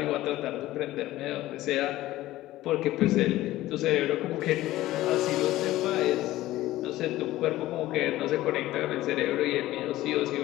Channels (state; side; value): quieter; right; 16.0 dB